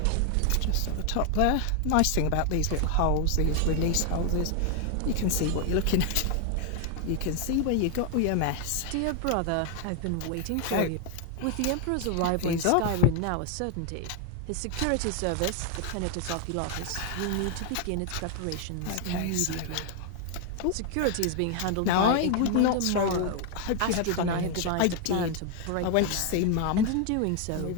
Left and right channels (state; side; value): different; both; correlation 0.00